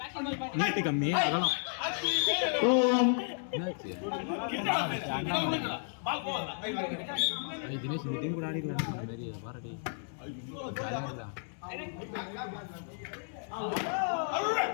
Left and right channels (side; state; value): right; silent; digital silence